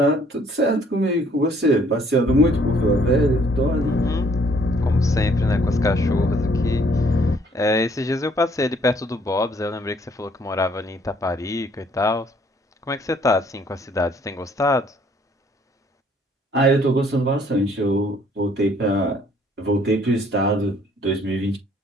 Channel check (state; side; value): normal; both; correlation 0.62